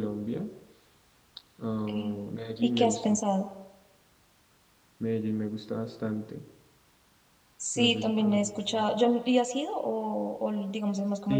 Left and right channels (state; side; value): identical; both; correlation 1.00